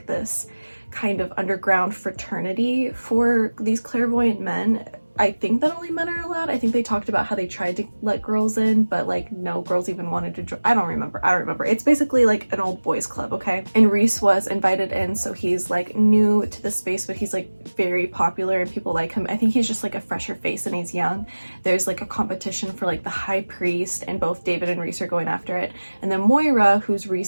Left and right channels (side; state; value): both; inverted; correlation -1.00